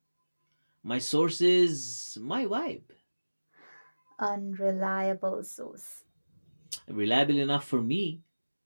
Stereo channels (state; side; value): inverted; both; correlation -1.00